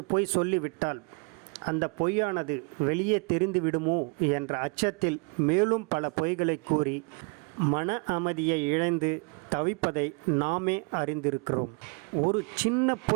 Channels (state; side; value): quieter; left; 34.4 dB